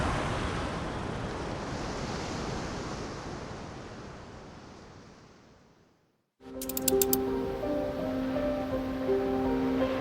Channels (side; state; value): both; identical; correlation 1.00